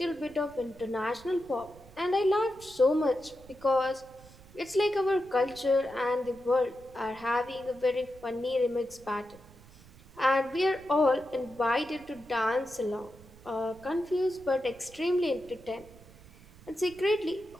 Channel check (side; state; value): right; noise; rumble, 22 dB below the sound